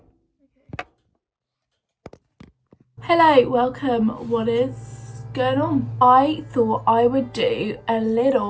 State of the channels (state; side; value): identical; both; correlation 1.00